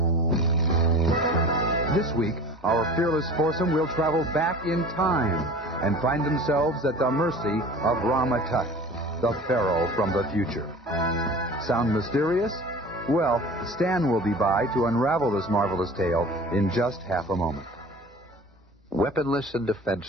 This week, our fearless foursome will travel back in time and find themselves at the mercy of Rama, the Pharaoh from the future. Sound mysterious? Well, Stan will be by to unravel this marvelous tale in just half a moment. Weaponless and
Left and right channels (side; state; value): both; normal; correlation 0.40